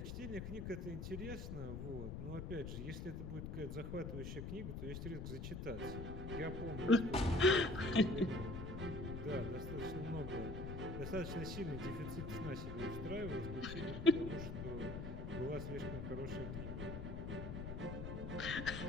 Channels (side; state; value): left; noise; rumble, 5 dB below the sound